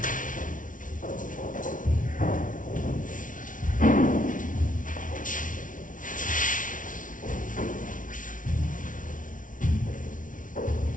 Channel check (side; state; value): right; late; 0.38 ms